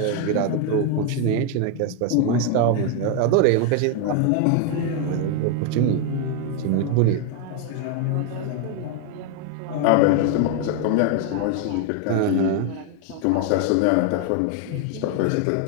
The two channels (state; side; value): different; both; correlation 0.01